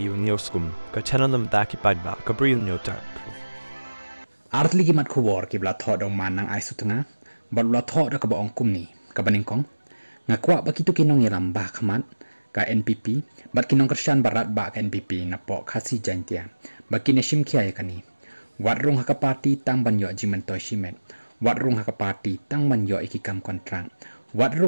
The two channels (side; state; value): both; inverted; correlation -1.00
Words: nioskum ka chananam daki padba ka bril nyotar. Artli gimat kubor kibla thod ong man nang ai sutanga balula thod ka ba ong kumni ka baningkong ngakwa ba kitu kinong yalam ba khamat ka NPP bat kinong Krisyan barat ba ka NPP na po khasi jantia ba kineshim khia yakani watrung haka party tang banyo jimentoy shimet watrung haka party tang banyo ikikam kontrang